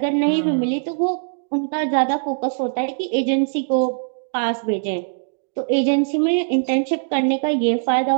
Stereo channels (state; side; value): silent; left; digital silence